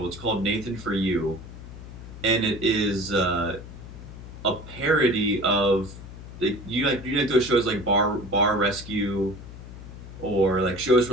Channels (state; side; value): noise; left; hum, 14 dB below the sound